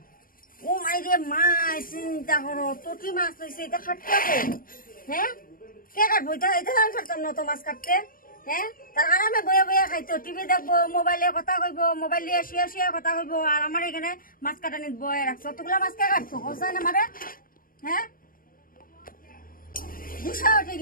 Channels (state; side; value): late; right; 0.41 ms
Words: ও মাই রে মাছ চিন্তা করো তোটি মাছ লইছে এটা খাটতে হবে হ্যাঁ কে কাটবো এটা এটা আমি কাটতাম না তো মাছ কাটতে হ্যাঁ তার আরামে বয়ে বয়ে খাইতো টিভি দেখবো মোবাইলে কথা কইবো মোবাইল দিয়ে শুয়ে শুয়ে কথা কইবো আর আমার এখানে মাছ কাটা নিত বয়ে রাখছো অতগুলা মাছ কে কাটছো কোথায় না মারে হ্যাঁ গুসা উঠে